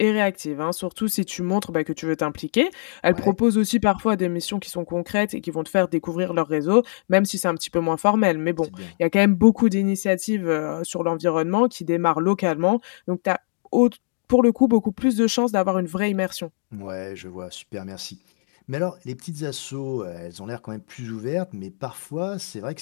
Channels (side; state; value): right; silent; digital silence